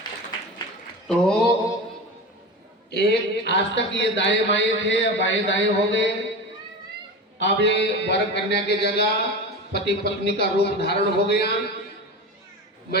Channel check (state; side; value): normal; both; correlation 0.28